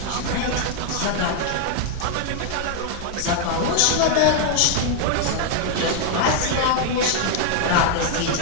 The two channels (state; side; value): different; both; correlation 0.00